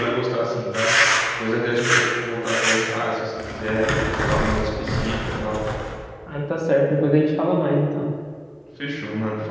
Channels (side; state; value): both; identical; correlation 1.00